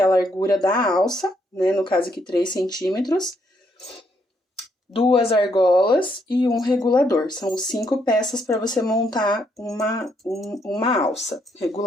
a largura da alça, né? No caso aqui 3 centímetros. 2 argolas e um regulador. São 5 peças para você montar uma alça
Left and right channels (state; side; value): normal; both; correlation 0.73